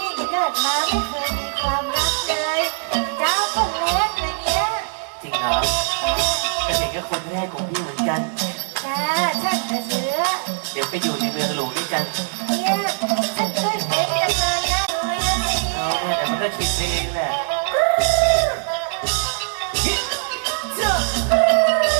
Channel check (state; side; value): silent; left; digital silence